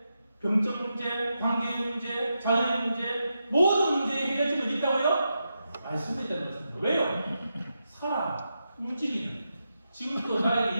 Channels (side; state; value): both; inverted; correlation -0.86